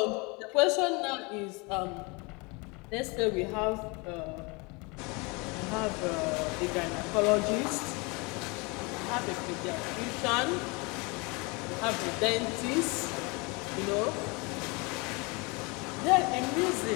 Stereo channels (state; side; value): quieter; right; 28.5 dB